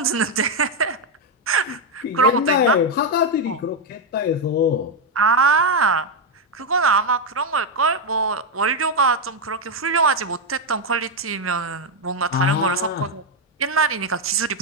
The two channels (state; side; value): normal; both; correlation 0.03